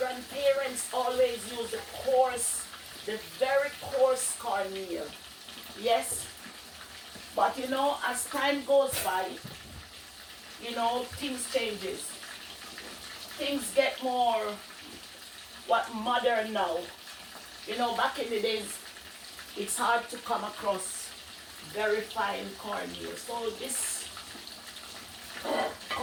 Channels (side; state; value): both; identical; correlation 1.00